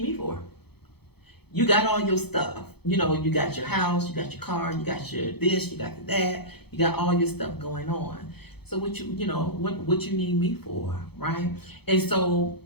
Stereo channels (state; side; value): late; right; 0.97 ms